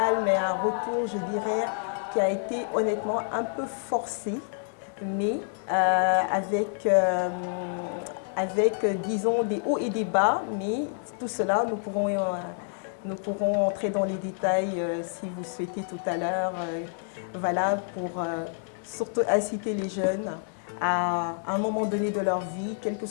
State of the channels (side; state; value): right; silent; digital silence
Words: mais un retour, je dirais, qui a été honnêtement un peu forcé, mais avec, disons, des hauts et des bas. Mais tout cela, nous pourrons entrer dans les détails si vous souhaitez tout à l'heure. Voilà, pour surtout inciter les jeunes à un moment donné de leur vie, quels que